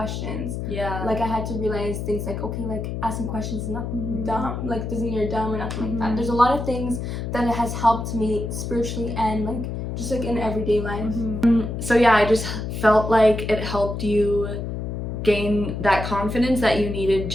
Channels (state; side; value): noise; left; hum, 4 dB below the sound